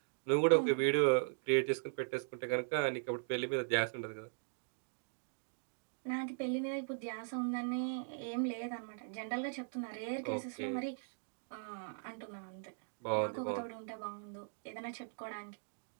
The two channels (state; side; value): silent; left; digital silence